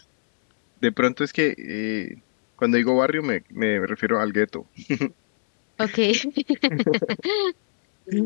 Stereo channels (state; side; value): silent; right; 63 dB below the other